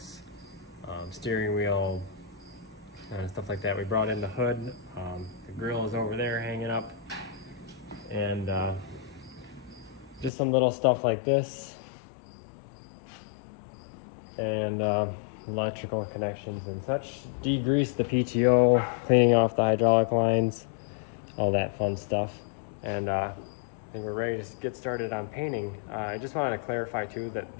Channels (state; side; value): drops out; right; at 10.3 s